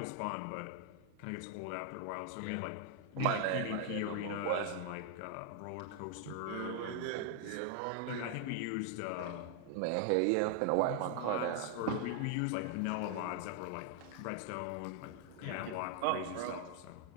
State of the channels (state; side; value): different; both; correlation 0.00